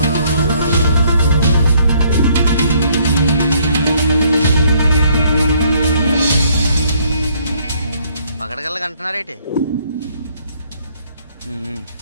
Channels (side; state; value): both; inverted; correlation -0.66